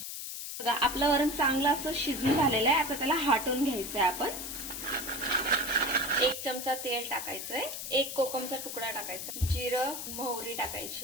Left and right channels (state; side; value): noise; left; hiss, 7 dB below the sound